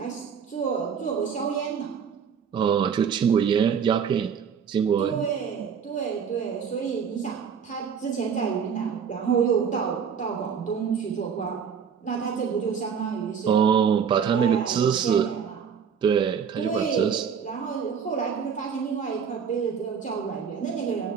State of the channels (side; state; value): left; quieter; 7.1 dB